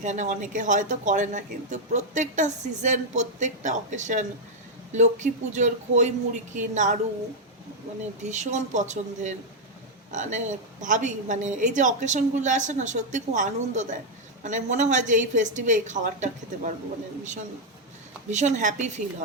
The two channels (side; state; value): both; normal; correlation 0.00